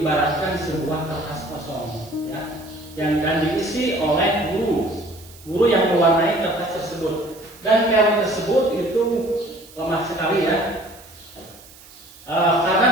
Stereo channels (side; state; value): right; noise; hiss, 22 dB below the sound